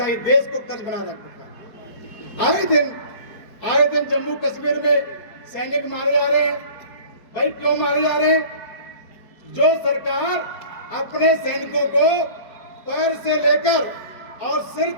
है। देश को कर्ज बना रखा है। आए दिन जम्मू कश्मीर में सैनिक मारे जा रहे हैं। भाई क्यों मारे जा रहे हैं? जो सरकार अपने सैनिकों को पैर से लेकर और सिर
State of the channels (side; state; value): right; late; 4.7 ms